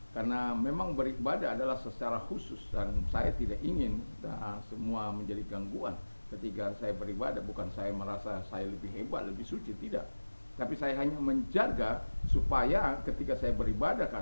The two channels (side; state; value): both; inverted; correlation -1.00